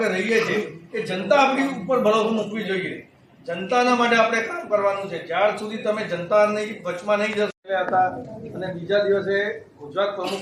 રહીએ છીએ, એ જનતા આપણી ઉપર ભરોસો મૂકવી જોઈએ. જનતાના માટે આપણે કામ કરવાનું છે. જ્યાર સુધી તમે જનતાની વચમાં નહીં જશો હતા અને બીજા દિવસે ગુજરાત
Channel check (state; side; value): identical; both; correlation 1.00